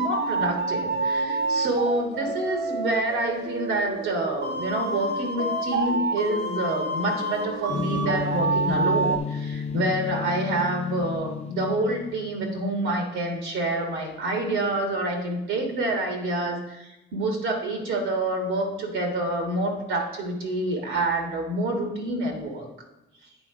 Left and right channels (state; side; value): normal; both; correlation 0.06